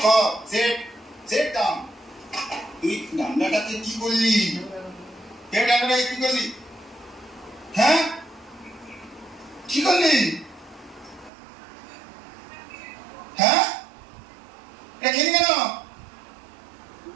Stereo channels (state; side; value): drops out; left; at 11.3 s